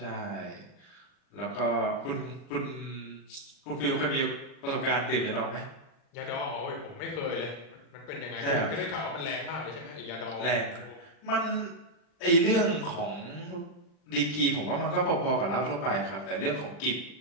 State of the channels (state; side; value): late; right; 39 ms